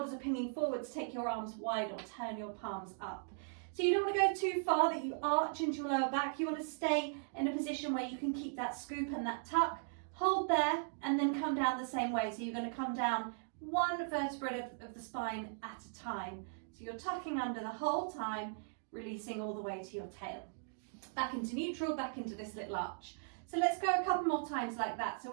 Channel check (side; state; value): left; silent; digital silence